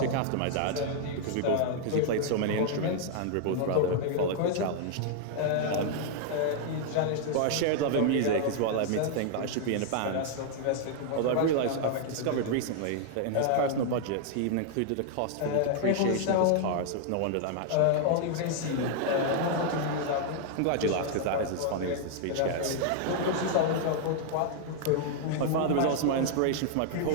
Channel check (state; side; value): different; both; correlation 0.00